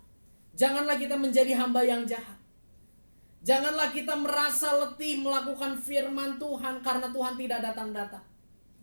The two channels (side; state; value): both; inverted; correlation -1.00